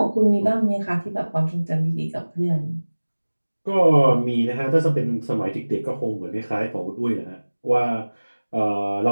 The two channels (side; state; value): both; inverted; correlation -1.00